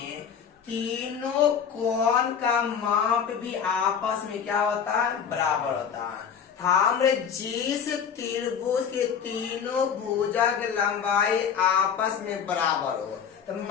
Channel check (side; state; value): right; quieter; 7.4 dB